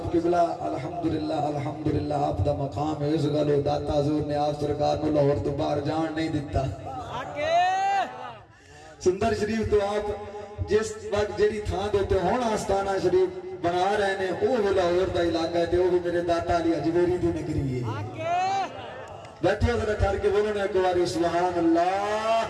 قبلہ الحمدللہ آپ دا مقام ہے اس گلو داتا حضور نے آپ سرکار نو لاہور تو باہر جان نہیں دیتا سندر شریف تو آپ جس وقت جیڑی تھان دیتے ہون آستانہ شریف بنا رہے ہیں وہ بھی لاہور دا علاقہ ہے وہ بھی میرے داتا علی اجمیری دی نگری ہے بیٹھے ذرا ٹھہر کے بولو نا ایک بار سبحان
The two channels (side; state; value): both; identical; correlation 1.00